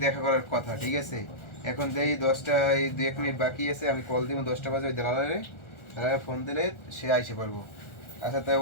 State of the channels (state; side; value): late; right; 1.4 ms